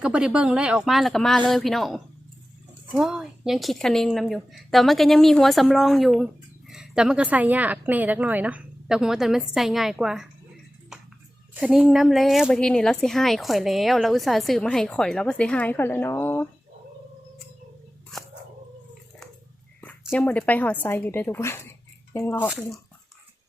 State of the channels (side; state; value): both; normal; correlation 0.95